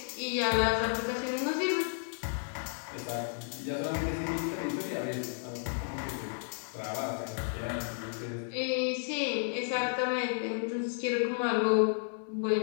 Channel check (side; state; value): right; silent; digital silence